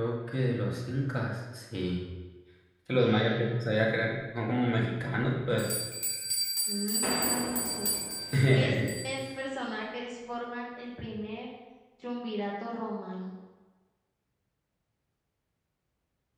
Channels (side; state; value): both; identical; correlation 1.00